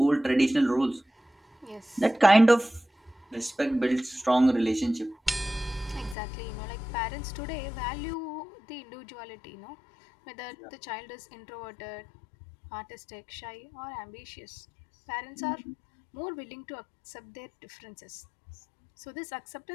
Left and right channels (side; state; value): right; drops out; at 6.2 s